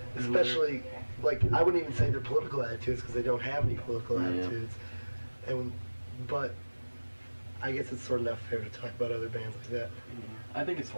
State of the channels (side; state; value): both; inverted; correlation -1.00